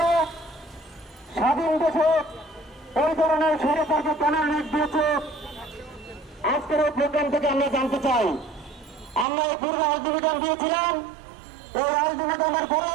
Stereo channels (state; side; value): drops out; left; at 9.2 s